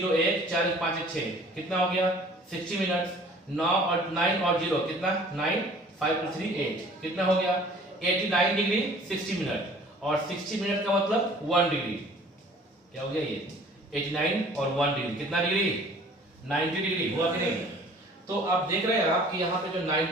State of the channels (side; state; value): both; normal; correlation 0.51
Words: 1 4 5 6 कितना हो गया 60 मिनट, 9 और 9 और 0 कितना 9, 5 + 3 8 कितना हो गया 89 डिग्री 60 मिनट, और 60 मिनट का मतलब 1 डिग्री, क्या हो गया ये 89 और 1 डिग्री कितना डिग्री 90 डिग्री हुआ कि नहीं। तो आप देख रहे हैं आप कि यहाँ पे जो